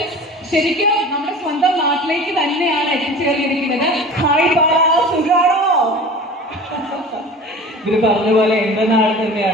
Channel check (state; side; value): normal; both; correlation 0.39